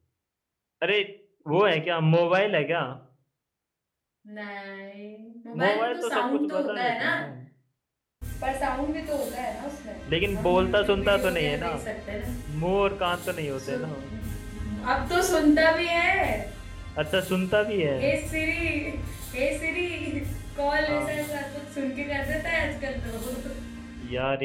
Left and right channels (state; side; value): identical; both; correlation 1.00